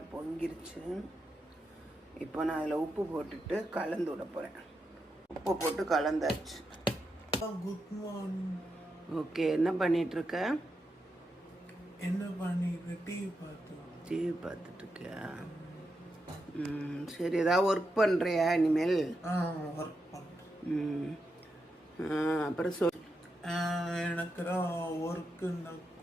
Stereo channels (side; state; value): both; normal; correlation 0.86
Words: பொங்கிருச்சு. இப்போ நான் அதில் உப்பு போட்டுட்டு கலந்து விட போகிறேன். உப்பு போட்டு கலந்தாச்சு. Good morning. ஓகே, என்ன பண்ணிகிட்ருக்க? என்ன பண்ணிட்டு டிவி பார்த்துட்டு இருக்கியா? சரி, ஏதாவது ஒர்க் பண்ணுறியா இனிமேல்? ஒர்க் பண்ணுறேன். அப்புறம் சொல். எனக்கு தான் ஒர்க்கு